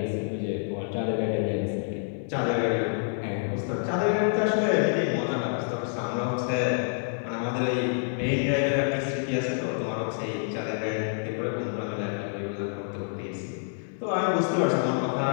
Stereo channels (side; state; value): right; silent; 58 dB below the other